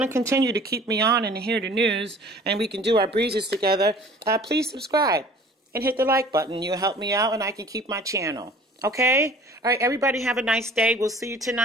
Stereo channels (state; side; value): normal; both; correlation 0.48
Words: to continue to keep me on and hear the news, and we can do our breezes together, please subscribe and hit the like button. You'll help me out, and I can keep my channel. Okay? All right, everybody have a nice day. We'll see you